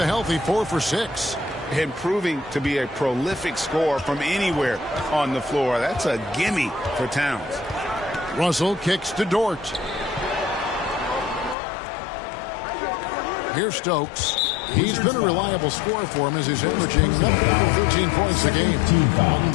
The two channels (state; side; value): drops out; right; at 11.6 s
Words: healthy 4 for 6. And proving to be a prolific scorer from anywhere on the floor. That's a gimme for Towns. Russell kicks to Dort. Here's Stokes. He's been a reliable scorer for him as he's averaging 13 points a game.